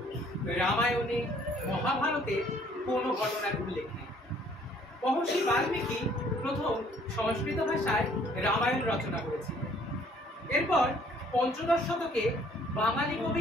রামায়ণে মহাভারতে কোনো ঘটনার উল্লেখ নেই। মহর্ষি বাল্মীকি প্রথম সংস্কৃত ভাষায় রামায়ণ রচনা করেছিলেন। এরপর পঞ্চদশ শতকে বাঙালি কবি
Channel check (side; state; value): both; normal; correlation 0.60